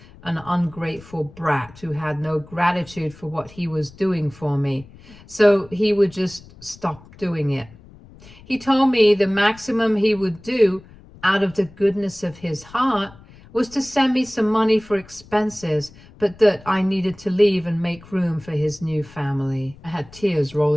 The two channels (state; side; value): noise; left; rumble, 22 dB below the sound